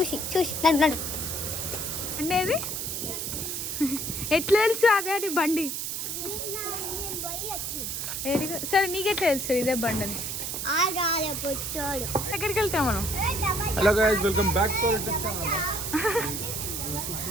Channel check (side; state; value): right; noise; hiss, 3 dB below the sound